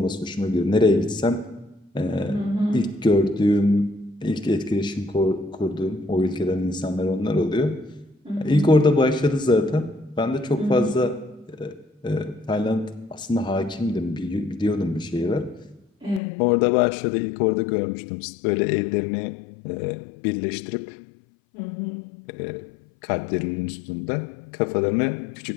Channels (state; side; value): drops out; right; at 16.2 s